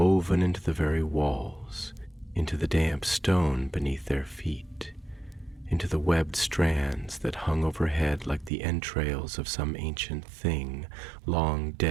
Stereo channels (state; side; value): drops out; left; at 8.5 s